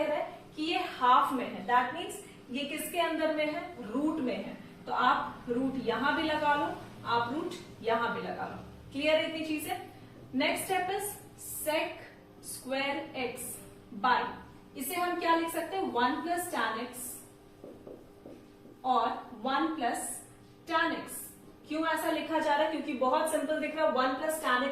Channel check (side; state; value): both; identical; correlation 1.00